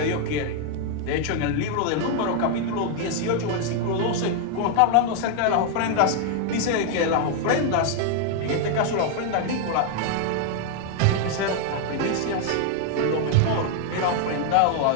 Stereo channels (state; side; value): different; both; correlation 0.00